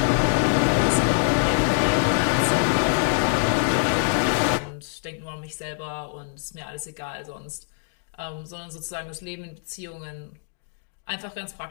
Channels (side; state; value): right; silent; digital silence